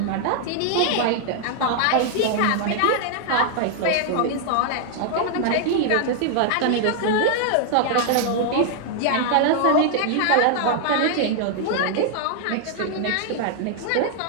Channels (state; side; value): different; both; correlation 0.00